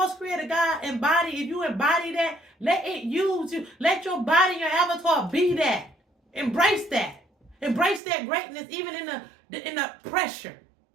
Creator God if you embody that, let it use you. Let your body, your avatar be that. Embrace that. Embrace that greatness even in the pressure.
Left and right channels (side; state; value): left; drops out; at 8.0 s